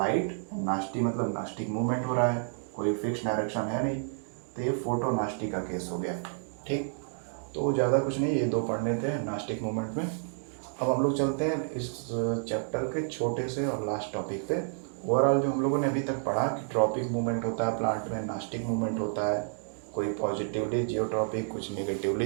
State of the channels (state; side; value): silent; left; digital silence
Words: nasty मतलब नास्टिक मूवमेंट हो रहा है, कोई फिक्स डायरेक्शन है नहीं, तो ये फोटोनास्टी का केस हो गया. ठीक, तो ज़्यादा कुछ नहीं, ये 2 पढ़ने थे नास्टिक मूवमेंट में. अब हम लोग चलते हैं इस चैप्टर के छोटे से और लास्ट टॉपिक पे. ओवरऑल जो हम लोगों ने अभी तक पढ़ा कि ट्रॉपिक मूवमेंट होता है प्लांट में, नास्टिक मूवमेंट होता है, कोई पॉजिटिवली जियोट्रॉपिक, कुछ नेगेटिवली